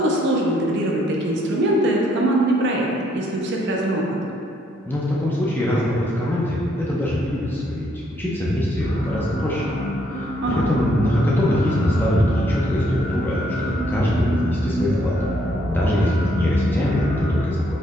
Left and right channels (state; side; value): normal; both; correlation 0.70